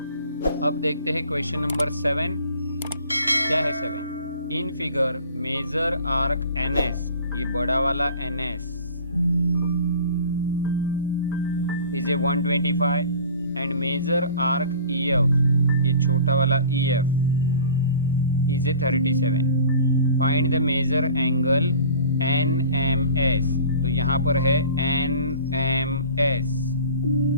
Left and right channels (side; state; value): both; inverted; correlation -0.45